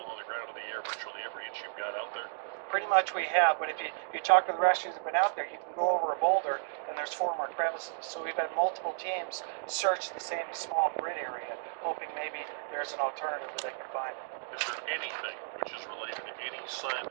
on the ground in the air, virtually every inch you've got out there. Pretty much we have, but if you talk to the rescuers that have been out there, you can go over a boulder and there's 4 more crevices. So we've had multiple teams search the same small grid area, hoping maybe there's an alternative that they can find. Is there anything which is related to any sign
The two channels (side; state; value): left; silent; digital silence